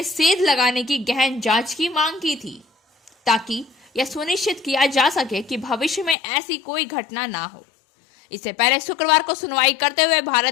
सेध लगाने की गहन जांच की मांग की थी, ताकि यह सुनिश्चित किया जा सके कि भविष्य में ऐसी कोई घटना ना हो। इससे पहले शुक्रवार को सुनवाई करते हुए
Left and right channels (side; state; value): right; drops out; at 6.2 s